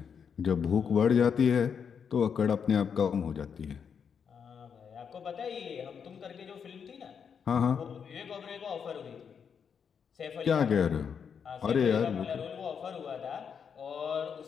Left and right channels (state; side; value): quieter; right; 6.9 dB